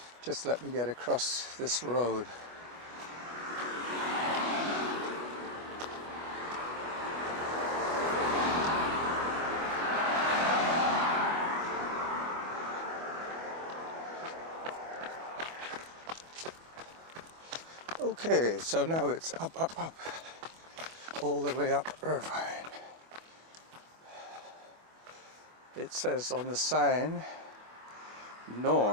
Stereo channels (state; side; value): late; left; 25 ms